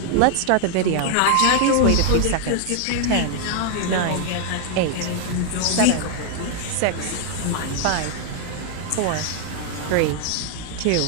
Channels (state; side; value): different; both; correlation 0.00